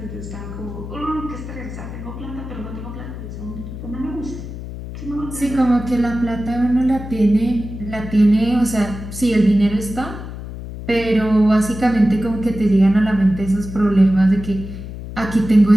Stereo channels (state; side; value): noise; left; hum, 10 dB below the sound